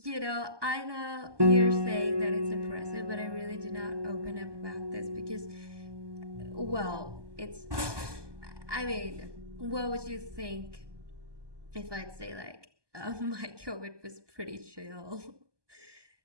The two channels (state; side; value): late; left; 1.2 ms